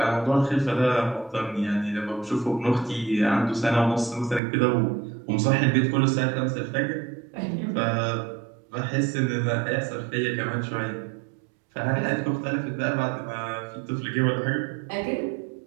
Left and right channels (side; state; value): left; drops out; at 4.4 s